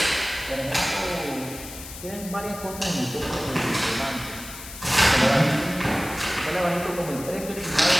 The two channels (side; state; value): left; noise; hiss, 13 dB below the sound